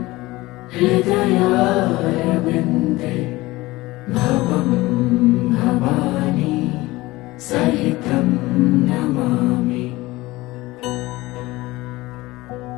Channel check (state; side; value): quieter; right; 19.7 dB